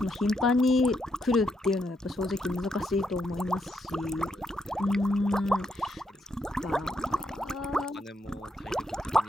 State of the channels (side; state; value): both; normal; correlation 0.79